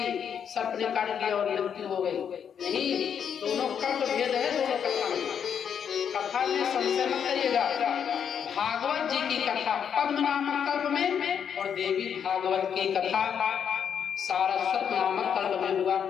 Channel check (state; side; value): quieter; right; 7.9 dB